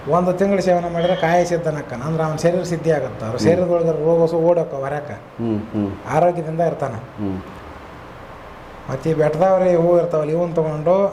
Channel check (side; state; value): both; identical; correlation 1.00